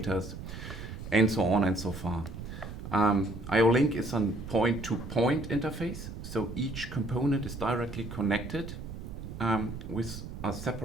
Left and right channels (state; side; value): noise; right; rumble, 10 dB below the sound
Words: and so on and so far. IO-Link is a point-to-point interface, so each component is directly connected with a